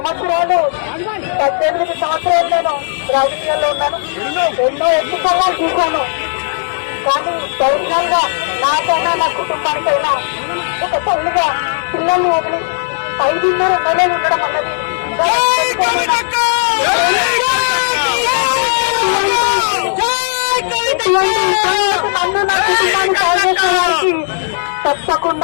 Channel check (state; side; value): silent; right; digital silence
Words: 18 సంవత్సరాలు నేను రాజకీయాల్లో ఉన్నాను. ఎన్నో ఎన్నికల్లో చూశాను. కానీ పర్సనల్ గా నాకైనా నా కుటుంబానికైనా ఒక తల్లిగా పిల్లల్ని వదిలి 5.5 నెలలు ఉండడం అన్నది నన్ను నా కుటుంబాన్ని సాధించడానికి